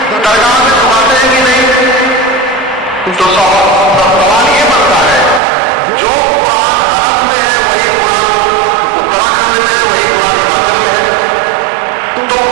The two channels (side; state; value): left; drops out; at 5.4 s